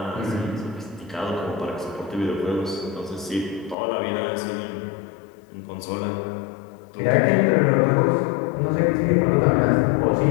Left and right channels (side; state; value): right; drops out; at 3.8 s